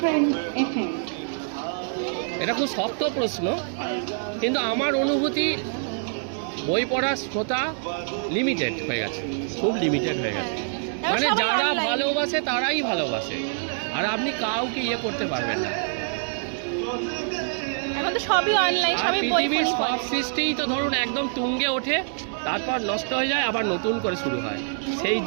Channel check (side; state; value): left; silent; 61 dB below the other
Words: এটা খুব শক্ত প্রশ্ন, কিন্তু আমার অনুভূতি বই পড়ার শ্রোতা লিমিটেড হয়ে গেছে, খুব লিমিটেড হয়ে গেছে। মানে যারা ভালোবাসে তারাই ভালোবাসে, আর আপনি কাউকে ইয়ে করতে পারবেন না। এখন তো সবই অনলাইন, সবই বই পড়ি। সব সৃষ্টিই তো ধরুন একদম তুঙ্গে ওঠে, তারপর নষ্ট হয়ে যায়, আবার নতুন করে শুরু হয়। সেই